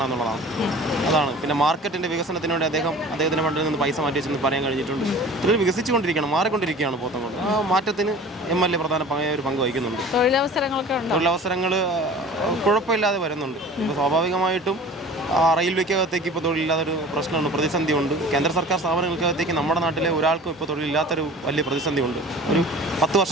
എന്നുള്ളതാണ്. അതാണ്. പിന്നെ മാർക്കറ്റിൻ്റെ വികസനത്തിന് വേണ്ടി അദ്ദേഹത്തിൻ്റെ ഫണ്ടിൽ നിന്ന് പൈസ മാറ്റി വെച്ചെന്ന് പറയാൻ കഴിഞ്ഞിട്ടുണ്ട്. ഇതിൽ വികസിച്ചുകൊണ്ടിരിക്കുകയാണ്, മാറിക്കൊണ്ടിരിക്കുകയാണ് പോത്തങ്കോട്. ആ മാറ്റത്തിന് MLA പ്രധാനമായ ഒരു പങ്ക് വഹിക്കുന്നുണ്ട്. തൊഴിലവസരങ്ങൾ കുഴപ്പമില്ലാതെ വരുന്നുണ്ട്. ഇപ്പോൾ സ്വാഭാവികമായിട്ടും റെയിൽവേക്കകത്തേക്ക് ഇപ്പോൾ തൊഴിലില്ലാത്തൊരു പ്രശ്നമുണ്ട്, പ്രതിസന്ധിയുണ്ട്. കേന്ദ്ര സർക്കാർ സ്ഥാപനങ്ങൾക്കകത്തേക്ക് നമ്മുടെ നാട്ടിലെ ഒരാൾക്കും ഇപ്പോൾ തൊഴിലില്ലാത്തൊരു വലിയ പ്രതിസന്ധിയുണ്ട്. ഒരു 10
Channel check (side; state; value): both; normal; correlation 0.42